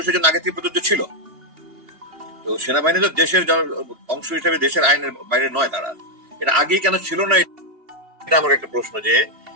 জন্য আগে থেকে প্রযোজ্য ছিল। তো সেনাবাহিনী তো দেশের অংশ হিসেবে দেশের আইনের বাইরে নয়, তারা এটা আগেই কেন ছিল না, এটা আমার একটা প্রশ্ন। যে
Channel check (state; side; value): late; left; 2.8 ms